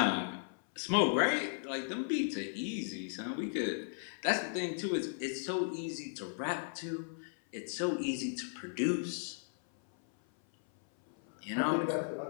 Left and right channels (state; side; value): silent; right; 54 dB below the other